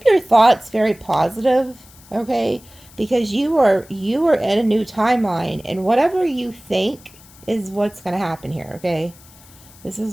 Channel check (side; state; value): left; noise; hiss, 24 dB below the sound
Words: your thoughts very positive, okay? Because you are in a new timeline, and whatever you think is what's going to happen here, okay? This